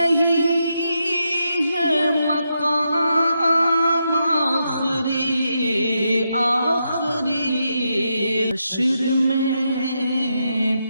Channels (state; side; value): inverted; both; correlation -0.83